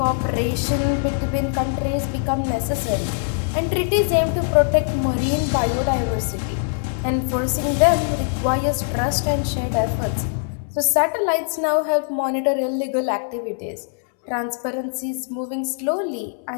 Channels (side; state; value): right; silent; 64 dB below the other